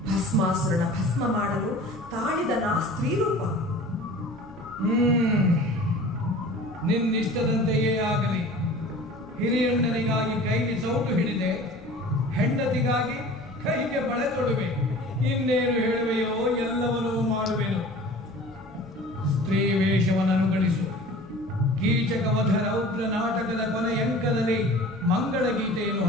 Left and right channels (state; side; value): normal; both; correlation 0.42